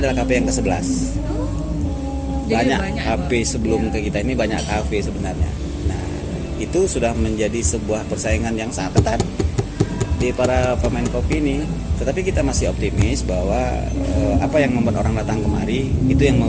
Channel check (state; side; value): identical; both; correlation 1.00